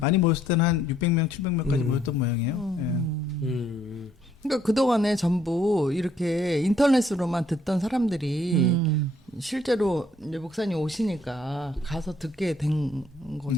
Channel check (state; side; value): normal; both; correlation 0.66